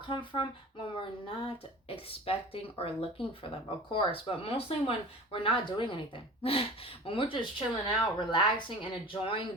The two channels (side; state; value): both; normal; correlation 0.38